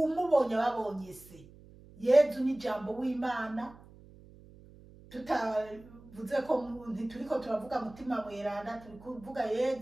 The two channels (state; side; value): noise; right; hum, 22 dB below the sound